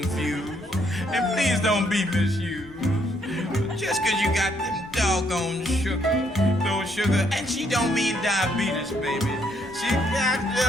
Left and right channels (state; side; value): noise; left; rumble, 24 dB below the sound